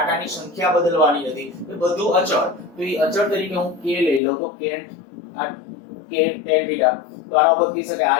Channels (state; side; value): drops out; right; at 4.2 s